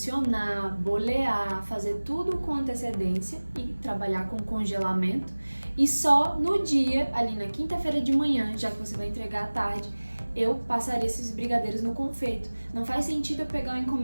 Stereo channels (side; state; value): both; inverted; correlation -1.00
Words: bolear, fazer tudo com antecedência e trabalhar com congelamento. E só no dia, ali na quinta-feira de manhã, já que você vai entregar à tarde, eu passaria esses brigadeiros no confeito. Não faz sentido eu pegar uma